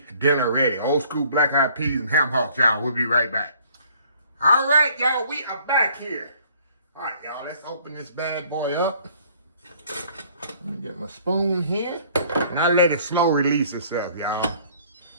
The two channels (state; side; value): inverted; both; correlation -0.58